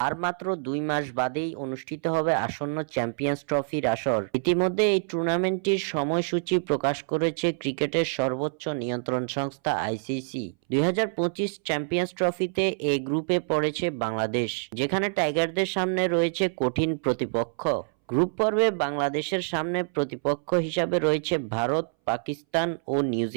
আর মাত্র 2 মাস বাদেই অনুষ্ঠিত হবে আসন্ন চ্যাম্পিয়ন্স ট্রফির আসর। ইতিমধ্যে এই টুর্নামেন্টটির সময়সূচি প্রকাশ করেছে ক্রিকেটের সর্বোচ্চ নিয়ন্ত্রণ সংস্থা আইসিসি। 2025 চ্যাম্পিয়ন্স ট্রফিতে এ গ্রুপে পড়েছে বাংলাদেশ, যেখানে টাইগারদের সামনে রয়েছে কঠিন প্রতিপক্ষ। গ্রুপ পর্বে বাংলাদেশের সামনে প্রতিপক্ষ হিসাবে রয়েছে ভারত, পাকিস্তান ও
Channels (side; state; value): left; silent; 60 dB below the other